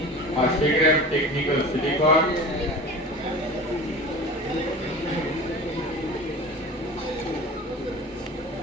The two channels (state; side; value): normal; both; correlation 0.36